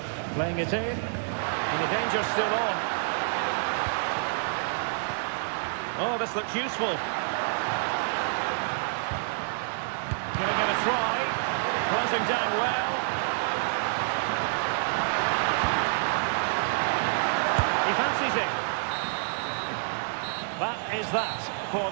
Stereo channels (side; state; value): left; silent; digital silence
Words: Playing it in, and the danger's still on. Oh, this looks useful. Giving it a try, closing down well. He fancies it. That is that for